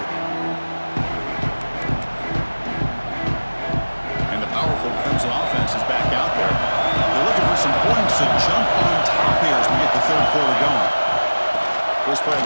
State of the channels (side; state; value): both; inverted; correlation -1.00